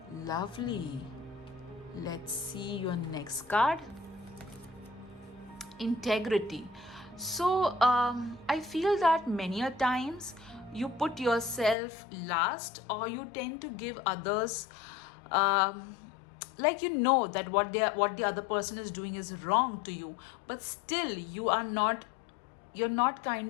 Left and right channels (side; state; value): right; drops out; at 11.8 s